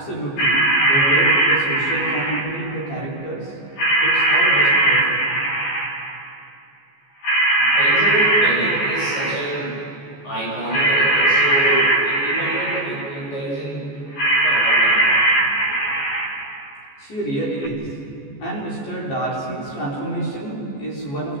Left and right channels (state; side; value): late; right; 14 ms